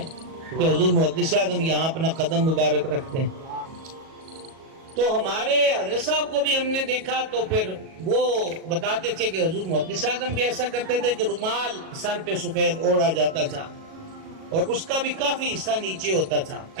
کہ حضور محدث اعظم یہاں اپنا قدم مبارک رکھتے ہیں. تو ہمارے حضرت صاحب کو بھی ہم نے دیکھا تو پھر وہ بتاتے تھے کہ حضور محدث اعظم بھی ایسا کرتے تھے کہ رومال سر پہ سفید اوڑھا جاتا تھا اور اس کا بھی کافی حصہ نیچے ہوتا تھا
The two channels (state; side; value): late; left; 37 ms